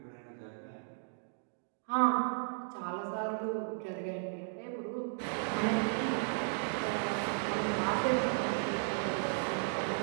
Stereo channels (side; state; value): left; silent; digital silence